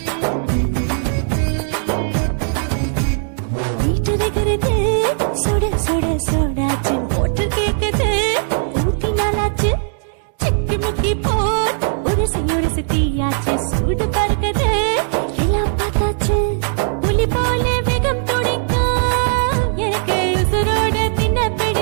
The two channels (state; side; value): silent; left; 63 dB below the other